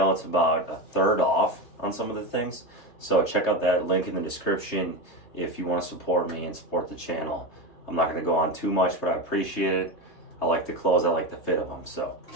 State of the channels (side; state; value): right; late; 3.2 ms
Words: It's about a third off on some of the things. So check out that link in the description if you want to support me and support the channel. I'm not going to go on too much, but I appreciate it. I like the clothes. I like the fit of them. So